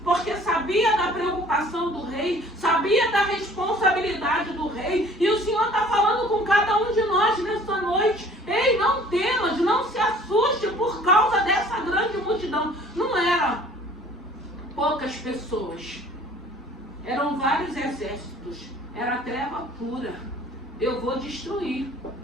Porque sabia da preocupação do rei, sabia da responsabilidade do rei. E o Senhor está falando com cada um de nós nessa noite. Ei, não temas, não se assuste por causa dessa grande multidão. Não eram poucas pessoas. Eram vários exércitos. Era treva pura. Eu vou destruir.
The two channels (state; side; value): normal; both; correlation 0.52